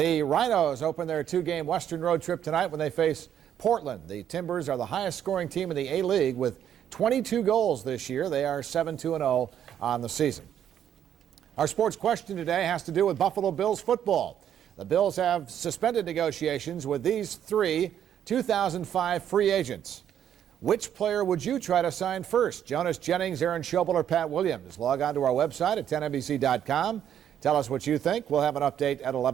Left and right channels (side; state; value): left; quieter; 9.8 dB